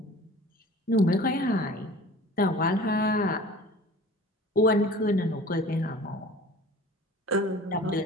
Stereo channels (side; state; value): both; normal; correlation 0.43